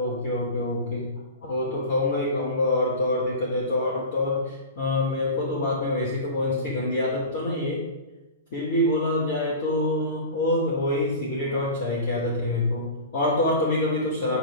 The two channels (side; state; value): both; inverted; correlation -0.32